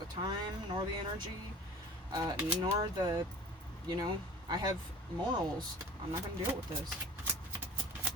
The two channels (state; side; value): normal; both; correlation 0.41